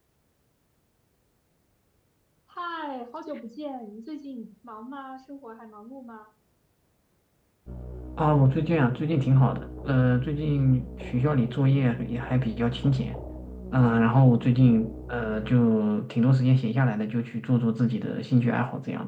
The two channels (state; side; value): identical; both; correlation 1.00